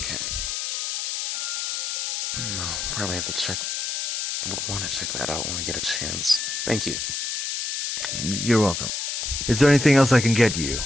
No, probably have to check. Would want to check that out when we get a chance. Thank you. You're welcome. Is there anything else I can get you?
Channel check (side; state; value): left; noise; hiss, 2 dB below the sound